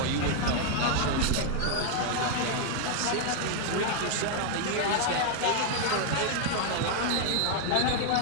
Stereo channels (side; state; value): both; different; correlation 0.00